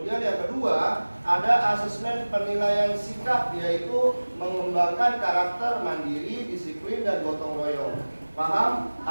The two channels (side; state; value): both; inverted; correlation -1.00